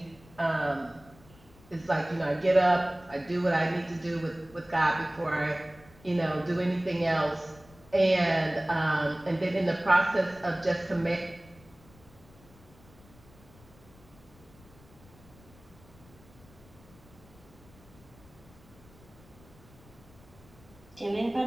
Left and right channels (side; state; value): left; noise; rumble, 24 dB below the sound